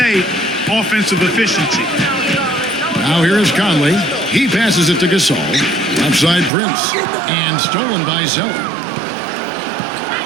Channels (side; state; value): left; drops out; at 6.5 s